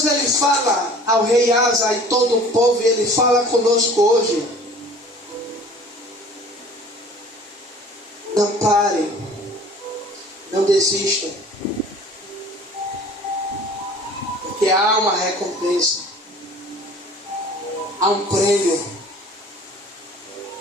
ele fala ao rei Asa e todo o povo, e ele fala conosco hoje. Não parem, não desistam, porque há uma recompensa, há um prêmio.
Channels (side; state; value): both; normal; correlation 0.47